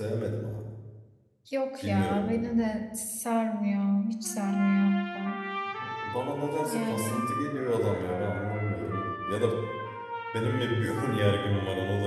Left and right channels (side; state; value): both; identical; correlation 1.00